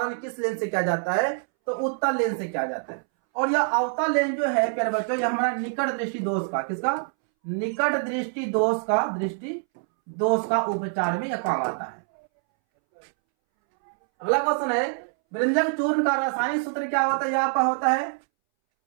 किस लेंस से किया जाता है, तो उत्तल लेंस से किया जाता है। और यह अवतल लेंस जो है प्यारे बच्चों, यह हमारा निकट दृष्टि दोष का, किसका, निकट दृष्टि दोष का उपचार में यह काम आता है। अगला क्वेश्चन है, व्यंजक चूर्ण का रासायनिक सूत्र क्या होता है, यह आपका होता है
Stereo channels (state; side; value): silent; left; 61 dB below the other